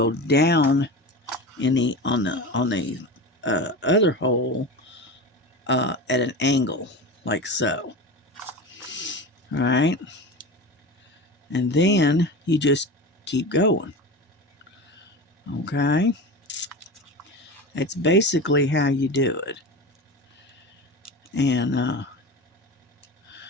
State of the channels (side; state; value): both; normal; correlation 0.28